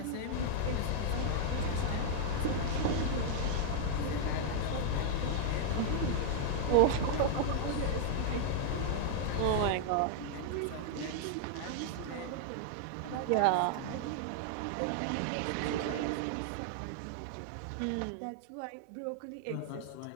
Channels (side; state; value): both; different; correlation -0.01